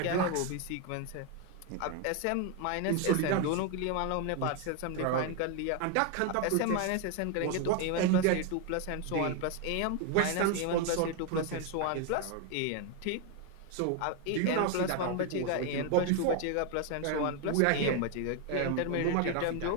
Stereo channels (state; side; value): different; both; correlation 0.01